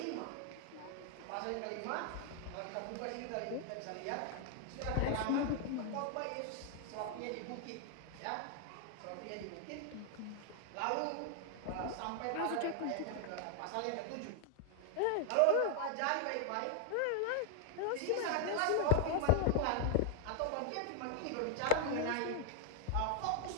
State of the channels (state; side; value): different; both; correlation 0.00